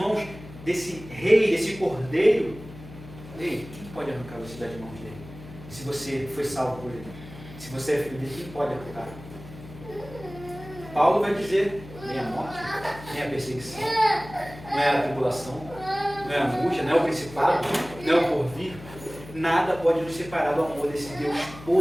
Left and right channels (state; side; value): noise; left; hum, 16 dB below the sound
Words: desse rei, desse Cordeiro, ei, quem pode arrancar você das mãos dele? Se você foi salvo por ele. Se você é filho dele, quem pode arrancar? Paulo vai dizer, nem a morte, nem a perseguição, não é a tribulação, não é a angústia, não é o principado, não é o porvir. Nada pode nos separar do amor desse Deus